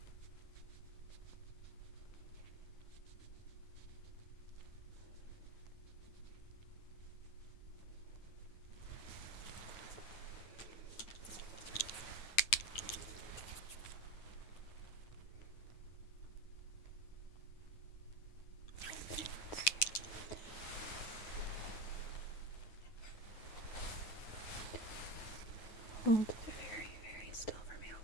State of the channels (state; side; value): late; right; 9.2 ms